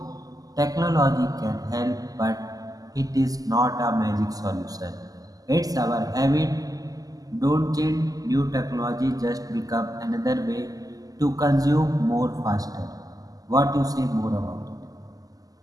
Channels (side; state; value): left; late; 0.17 ms